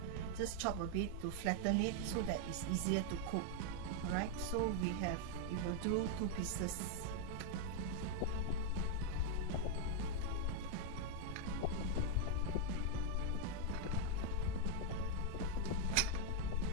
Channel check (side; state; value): both; different; correlation 0.00